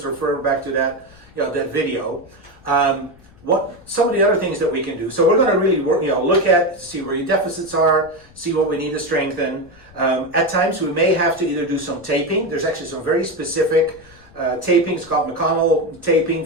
refer back to that that video. What some of the other things that we can do. So we're going to really work, look at, see where your deficits are, see what we need to strengthen. At times we may have to either do some taping. There's actually some very specific taping. It's called McConnell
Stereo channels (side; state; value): left; noise; rumble, 25 dB below the sound